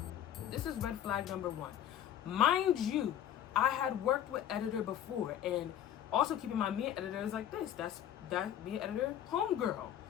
This is red flag number one. Mind you, I had worked with editor before, and also keep in mind, me and editor is like this. That me and editor, homegirl.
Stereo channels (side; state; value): right; quieter; 10.7 dB